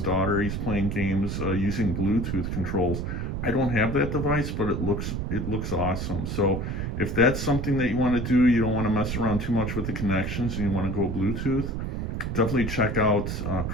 daughter. He's playing games using Bluetooth controls. I don't have that device, but it looks awesome. So if that's something that you want to do, you don't want to mess around too much with the connections, and you want to go Bluetooth, definitely check out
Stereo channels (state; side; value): noise; right; rumble, 3 dB below the sound